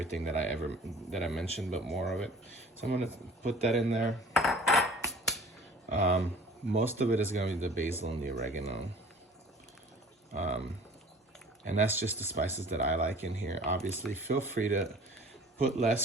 that I mentioned, but more of it. So I'm gonna put that in there. Most of it is gonna be the basil and the oregano. And that's just the spices that I like in here. Obviously, feel free to put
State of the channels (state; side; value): normal; both; correlation 0.47